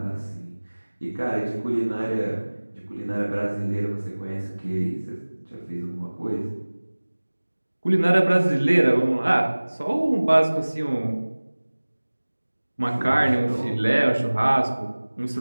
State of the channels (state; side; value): inverted; both; correlation -1.00